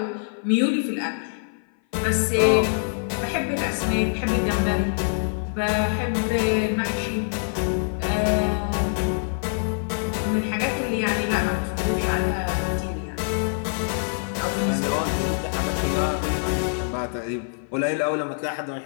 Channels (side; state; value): right; silent; 56 dB below the other